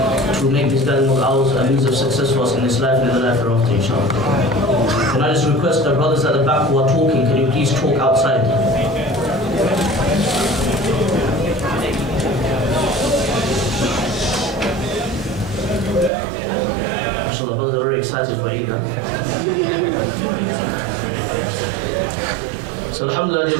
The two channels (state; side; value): drops out; left; at 16.1 s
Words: to make this gathering of ours a means of success for us in this life and in the life hereafter, inshallah. Can I just request the brothers at the back who are talking, can you please talk outside? MashaAllah, brothers are very excited for Eid. So alhamdulillah, dear